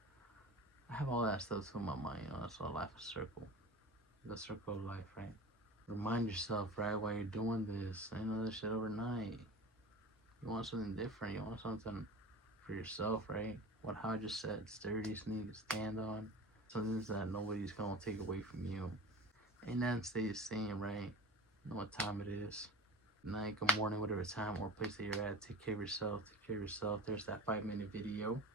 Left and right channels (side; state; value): both; normal; correlation 0.36